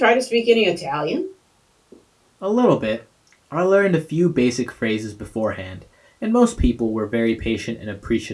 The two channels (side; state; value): both; identical; correlation 1.00